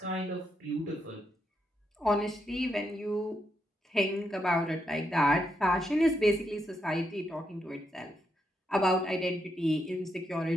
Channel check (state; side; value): normal; both; correlation 0.81